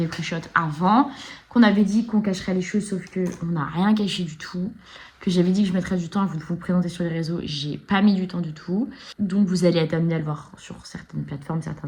pré-shot avant, qu'on avait dit qu'on cacherait les choses, sauf qu'on n'a rien caché du tout. Que j'avais dit que je mettrais du temps à vous présenter sur les réseaux, j'ai pas mis du temps du tout. Donc vous allez être amené à le voir sur certaines plateformes, certains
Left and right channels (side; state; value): both; identical; correlation 1.00